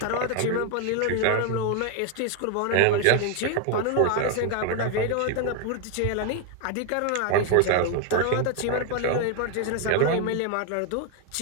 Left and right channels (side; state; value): both; different; correlation 0.01